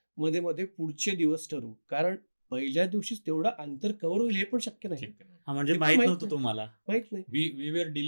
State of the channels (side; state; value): both; inverted; correlation -1.00